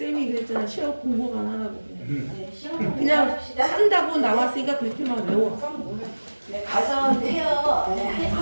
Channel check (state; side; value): inverted; both; correlation -1.00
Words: 그랬잖아 시험 공부만 하라고 그냥. 네, 시험 공부만 그냥 합시다. 한다고 나왔으니까 그렇게만 외워. 네, 가서 해요. 네,